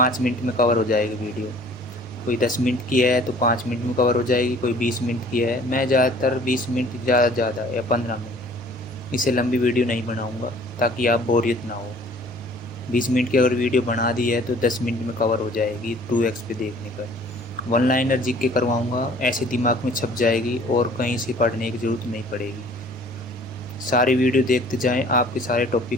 मिनट में कवर हो जाएगी वीडियो। कोई 10 मिनट की है तो 5 मिनट में कवर हो जाएगी, कोई 20 मिनट की है। मैं ज़्यादातर 20 मिनट ज़्यादा या 15 मिनट, इससे लंबी वीडियो नहीं बनाऊँगा ताकि आप बोरियत ना हो। 20 मिनट की अगर वीडियो बना दी है तो 10 मिनट में कवर हो जाएगी 2x पे देखने पर। वन लाइनर जी के करवाऊँगा, ऐसे दिमाग में छप जाएगी और कहीं से पढ़ने की ज़रूरत नहीं पड़ेगी। सारी वीडियो देखते जाएं, आपके सारे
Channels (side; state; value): both; normal; correlation 0.52